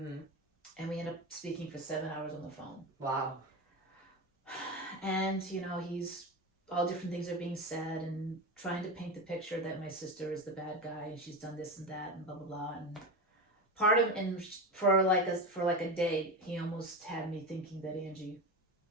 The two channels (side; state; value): both; normal; correlation 0.21